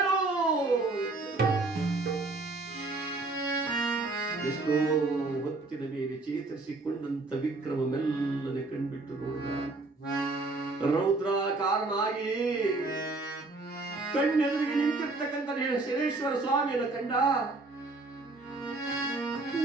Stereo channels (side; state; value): left; quieter; 3.3 dB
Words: ಎಷ್ಟೋ ಹೊತ್ತಿನ ಮೇಲೆ ಚೇತರಿಸಿಕೊಂಡಂತ ವಿಕ್ರಮ ಮೆಲ್ಲನೆ ಕಣ್ಬಿಟ್ಟು ನೋಡಿದ. ರೌದ್ರಾಕಾರನಾಗಿ ಕಣ್ಣೆದುರಿಗೆ ನಿಂತಿರ್ತಕ್ಕಂಥ ಶನೇಶ್ವರ ಸ್ವಾಮಿಯನ್ನು ಕಂಡ.